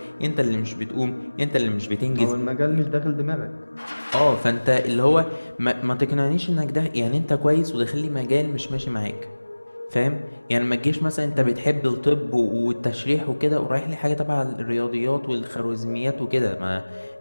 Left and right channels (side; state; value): both; inverted; correlation -1.00